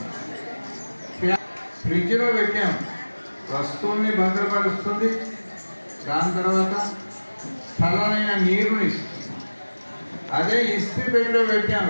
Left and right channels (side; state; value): both; inverted; correlation -1.00